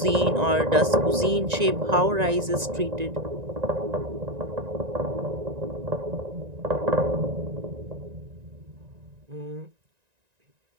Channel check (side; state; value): left; late; 1.9 ms